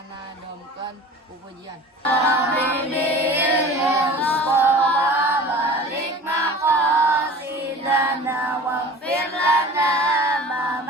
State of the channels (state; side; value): normal; both; correlation 0.40